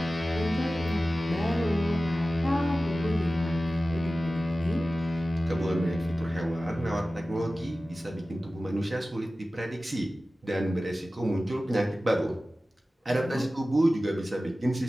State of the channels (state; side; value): normal; both; correlation 0.96